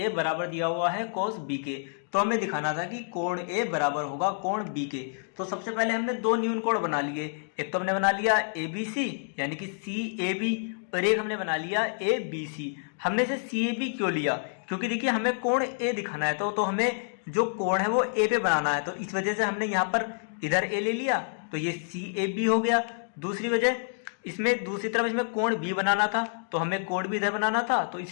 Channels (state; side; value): silent; right; digital silence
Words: बराबर दिया हुआ है कोस B के, तो हमें दिखाना था कि कोण A बराबर होगा कोण B के। तो सबसे पहले हमने दो न्यून कोण बना लिए, एक तो हमने बना लिया ABC यानी कि CAB, और एक हमने बना लिया ABC। हमने इसे CAB क्यों लिया, क्योंकि देखिए हमें कोण A दिखाना है, तो हमें जो कोण है वो A पे बनाना है, तो इस वजह से हमने यहाँ पर इधर A ले लिया, तो ये CAB हो गया। दूसरी वजह, इसमें दूसरी तरफ इसमें कोण B बनाना था, तो हमें कोण B इधर बनाना था, तो